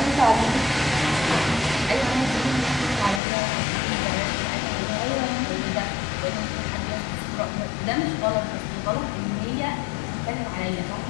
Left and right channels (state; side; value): drops out; right; at 3.2 s